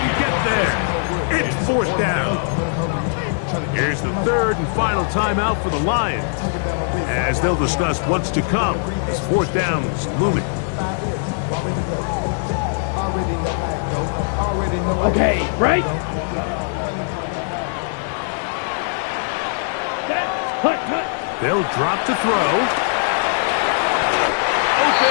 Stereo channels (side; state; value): right; silent; digital silence